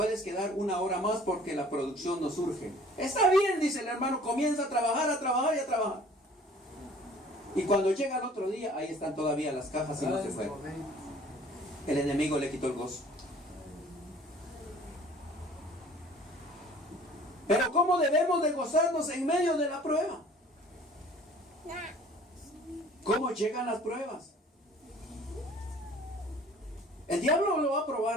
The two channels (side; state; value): both; normal; correlation 0.51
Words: quedar 1 hora más porque la producción nos urge. Está bien, dice el hermano, comienza a trabajar y a trabajar. Y cuando llega el otro día, ahí están todavía las cajas y no se fueron. El enemigo le quitó el gozo. Pero ¿cómo debemos de gozarnos en medio de la prueba? ¿Cómo llegan las pruebas? El diablo lo va a